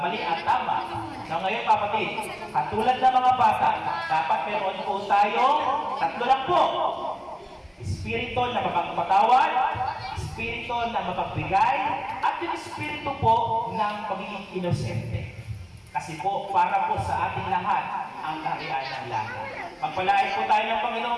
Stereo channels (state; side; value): identical; both; correlation 1.00